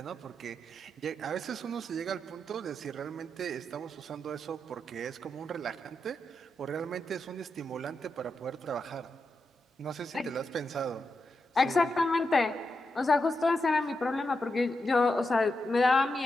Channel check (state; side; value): normal; both; correlation 0.86